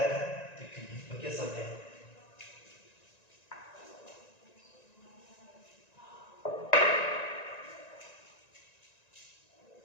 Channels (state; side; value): late; right; 1.9 ms